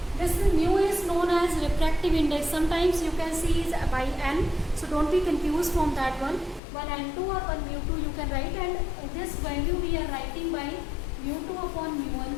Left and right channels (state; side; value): drops out; right; at 6.6 s